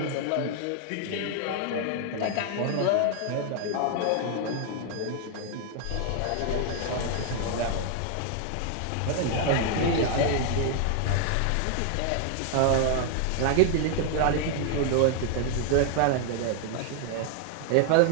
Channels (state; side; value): different; both; correlation 0.00